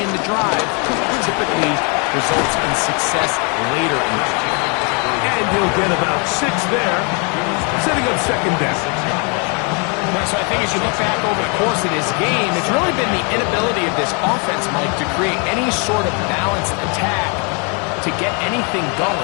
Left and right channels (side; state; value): right; quieter; 35.2 dB